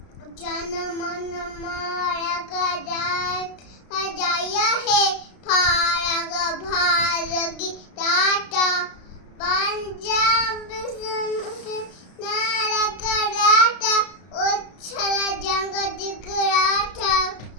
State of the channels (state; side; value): late; right; 33 ms